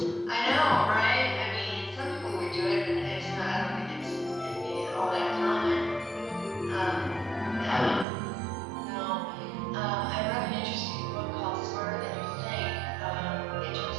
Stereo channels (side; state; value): left; drops out; at 8.1 s